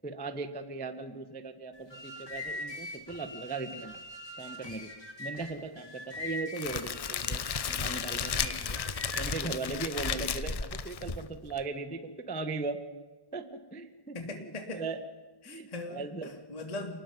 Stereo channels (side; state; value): right; late; 1.1 ms